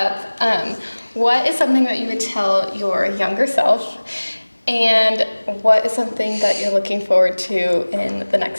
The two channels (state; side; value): inverted; both; correlation -1.00